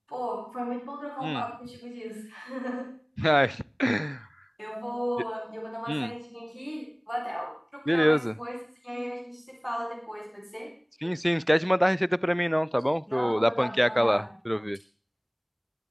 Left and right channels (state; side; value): identical; both; correlation 1.00